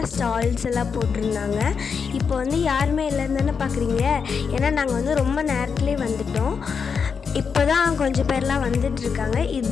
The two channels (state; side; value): quieter; right; 6.0 dB